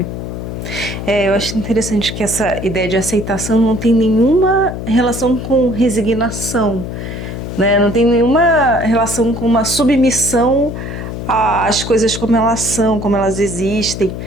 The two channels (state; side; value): noise; left; hum, 7 dB below the sound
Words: Eu acho interessante que essa ideia de aceitação não tem nenhuma relação com resignação. né? Não tem nenhuma relação com uma submissão às coisas como elas são, como elas existem.